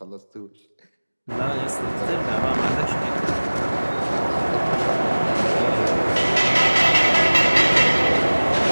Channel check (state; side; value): inverted; both; correlation -1.00